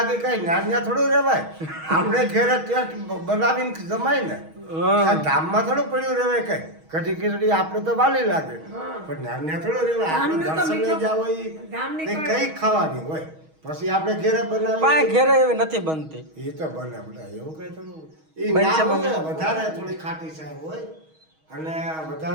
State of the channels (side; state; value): left; late; 6.3 ms